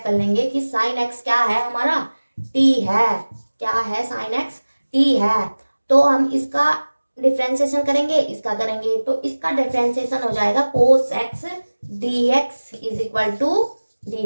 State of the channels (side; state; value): both; inverted; correlation -1.00